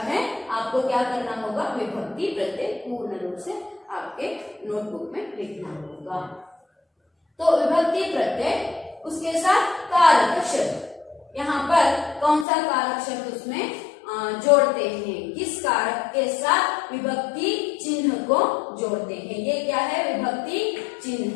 है, आपको क्या करना होगा, विभक्ति प्रत्यय पूर्ण रूप से आपके नोटबुक में लिखना होगा. तो विभक्ति प्रत्यय, उसके साथ कारक शब्द, यहाँ पर कौन सा कारक शब्द उसमें जोड़ते हैं, किस कारक के साथ विभक्ति चिन्ह को जोड़ते हैं. ये क्या है, विभक्ति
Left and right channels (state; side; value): drops out; right; at 12.5 s